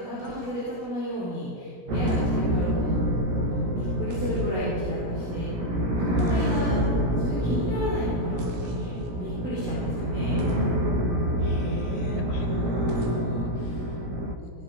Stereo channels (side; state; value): left; late; 17 ms